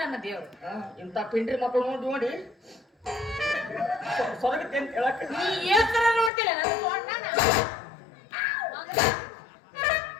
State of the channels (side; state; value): right; drops out; at 6.3 s